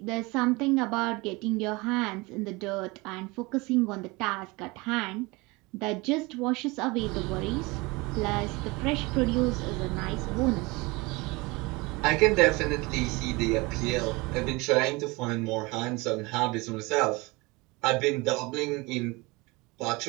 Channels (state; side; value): quieter; left; 24.5 dB